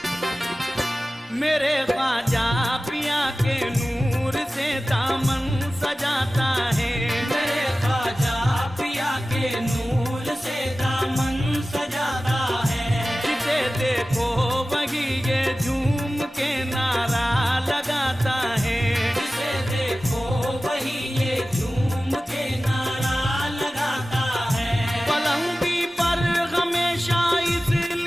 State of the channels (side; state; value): both; normal; correlation 0.96